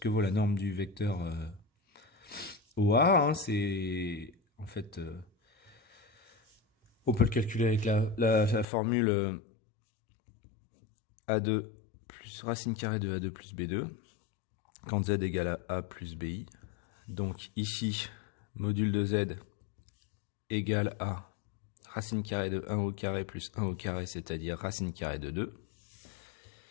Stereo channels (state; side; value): drops out; right; at 8.7 s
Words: que vaut la norme du vecteur OA. Hein. C'est en fait, on peut le calculer avec la formule A2 plus racine carrée de A2 plus B2, quand Z égale à A plus BI. Donc ici, module de Z égale à racine carrée de 1 au carré plus 1 au carré, c'est-à-dire racine carrée de 2.